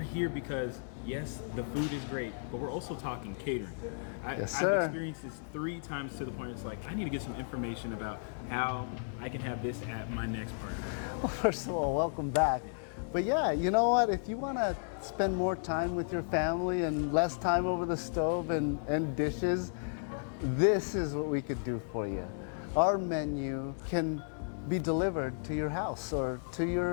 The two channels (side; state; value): right; silent; digital silence